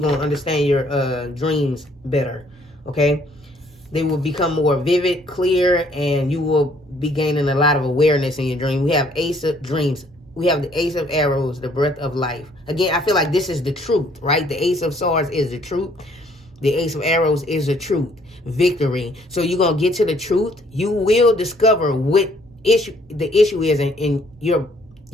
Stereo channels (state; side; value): normal; both; correlation 0.63